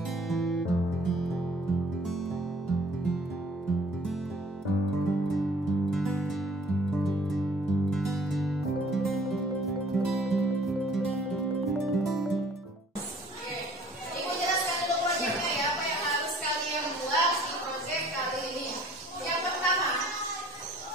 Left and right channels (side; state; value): both; normal; correlation 0.54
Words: Ibu jelaskan dulu proyeknya ya, apa yang harus kalian buat di proyek kali ini. Yang pertama,